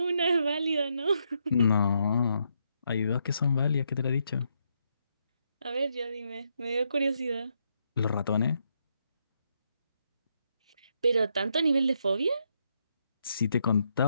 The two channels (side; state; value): both; inverted; correlation -0.78